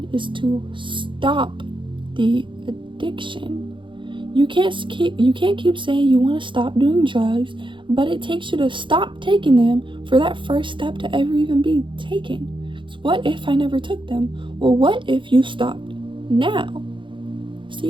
is to stop the addiction. You can't keep saying you want to stop doing drugs, but it takes you to stop taking them for that first step to ever even be taken. So what if I never took them? Well, what if you stopped now?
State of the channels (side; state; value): left; late; 0.24 ms